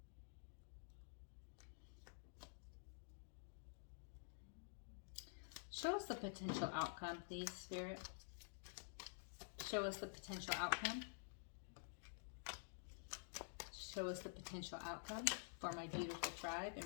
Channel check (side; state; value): right; silent; digital silence